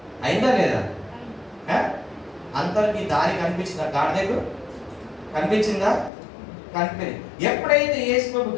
అయిందా లేదా? అందరికి దారి కనిపించిందా? గాడిదకు కనిపించిందా? కనిపించింది. ఎప్పుడైతే యేసు ప్రభు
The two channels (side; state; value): right; drops out; at 6.1 s